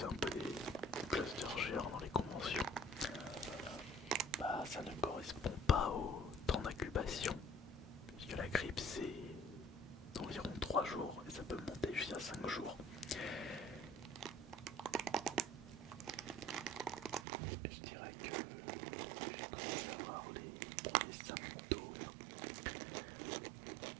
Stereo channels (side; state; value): left; drops out; at 17.2 s